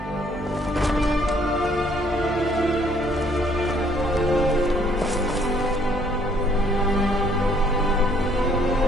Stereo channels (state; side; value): normal; both; correlation 0.63